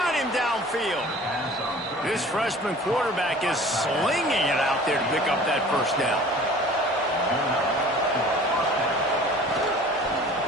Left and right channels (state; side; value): normal; both; correlation 0.46